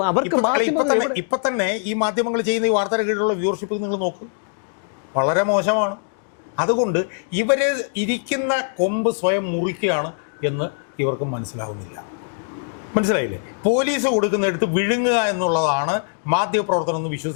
അവർക്ക് ഇപ്പം തന്നെ ഈ മാധ്യമങ്ങൾ ചെയ്യുന്ന ഈ വാർത്തയുടെ കീഴിലുള്ള വ്യൂവർഷിപ്പ് നിങ്ങൾ നോക്ക്, വളരെ മോശമാണ്. അതുകൊണ്ട് ഇവര് ഇരിക്കുന്ന കൊമ്പ് സ്വയം മുറിക്കുകയാണ് എന്ന് ഇവർക്ക് മനസ്സിലാവുന്നില്ല. മനസ്സിലായില്ലേ? പോലീസ് കൊടുക്കുന്നിടത്ത് വിഴുങ്ങുക എന്നുള്ളതാണ് മാധ്യമപ്രവർത്തനം എന്ന്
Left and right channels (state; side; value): silent; right; 63 dB below the other